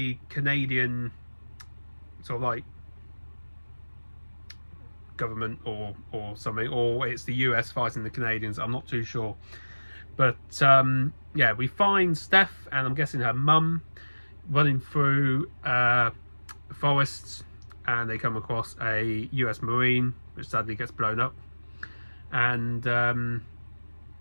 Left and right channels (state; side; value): inverted; both; correlation -1.00